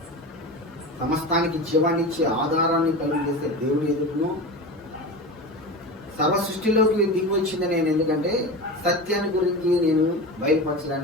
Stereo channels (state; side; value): normal; both; correlation 0.27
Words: సమస్తానికి జీవాన్నిచ్చే ఆధారాన్ని కలిగేసే దేవుని ఎదుటను సర్వ సృష్టిలోకి దిగి వచ్చింది నేను. ఎందుకంటే సత్యాన్ని గురించి నేను